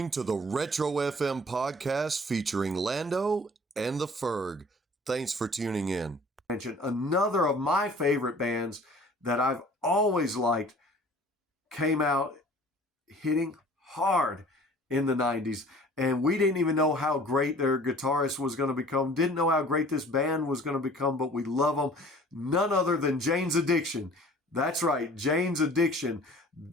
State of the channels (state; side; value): normal; both; correlation 0.49